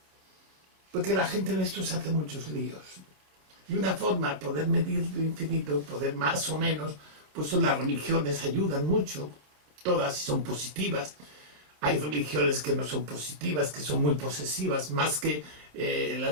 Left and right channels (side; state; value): left; late; 27 ms